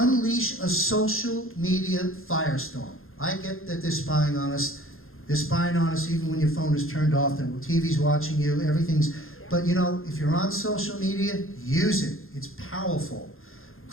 a social media firestorm. I get that they're spying on us. They're spying on us even when your phone is turned off and TV's watching you, everything's... But you know, if you're on social media, use it. It's powerful.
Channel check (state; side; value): late; right; 0.60 ms